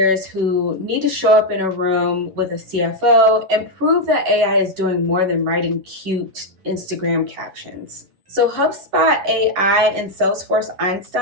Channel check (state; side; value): late; left; 11 ms